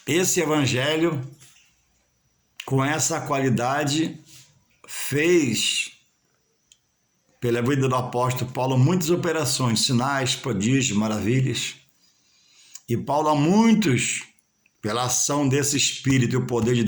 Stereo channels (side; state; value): both; identical; correlation 1.00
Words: esse evangelho, com essa qualidade, fez, pela vida do apóstolo Paulo, muitas operações, sinais, prodígios, maravilhas. E Paulo, a muitos, pela ação desse Espírito e o poder de